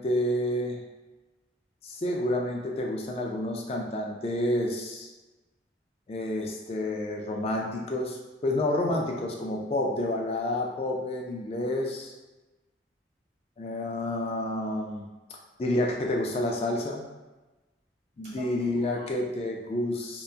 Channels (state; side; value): normal; both; correlation 0.49